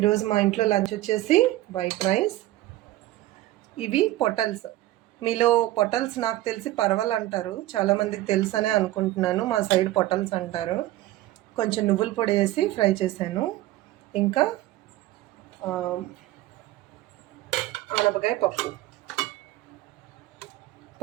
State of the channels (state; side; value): quieter; left; 15.9 dB